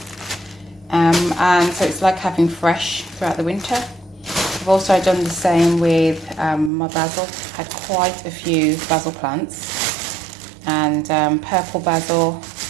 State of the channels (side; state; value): left; drops out; at 6.7 s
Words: and so it's like having fresh throughout the winter. I've also done the same with my basil. Had quite a few basil plants, and purple basil.